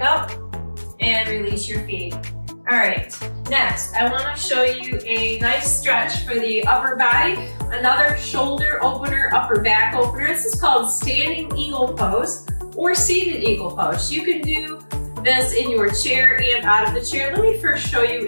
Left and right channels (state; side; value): inverted; both; correlation -1.00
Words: up and release your feet. All right, next, I want to show you a nice stretch for the upper body. Another shoulder opener, upper back opener. This is called standing eagle pose or seated eagle pose. You can do this in your chair and out of the chair. Let me first show you